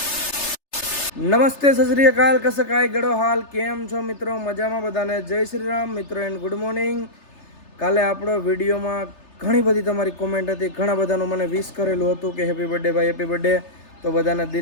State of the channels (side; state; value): right; late; 3.3 ms